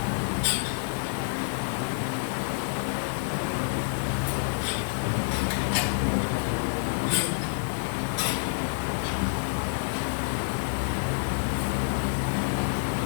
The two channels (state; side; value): silent; right; 56 dB below the other